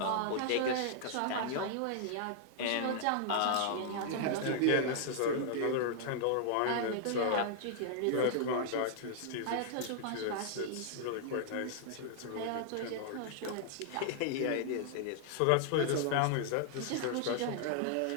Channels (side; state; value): both; different; correlation -0.01